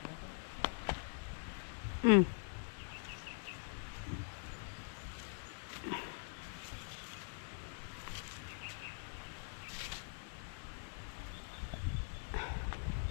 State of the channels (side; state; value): right; silent; digital silence